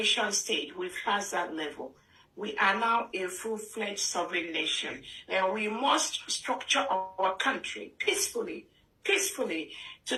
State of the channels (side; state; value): both; identical; correlation 1.00